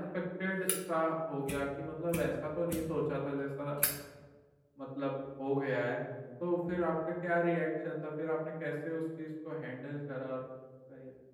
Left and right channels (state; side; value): identical; both; correlation 1.00